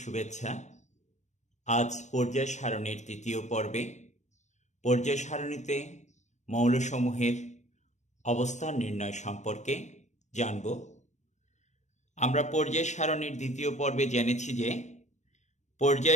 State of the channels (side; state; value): right; late; 0.34 ms